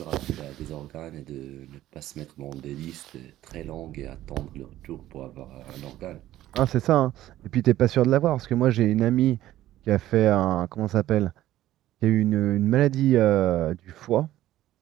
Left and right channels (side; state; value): left; quieter; 14.1 dB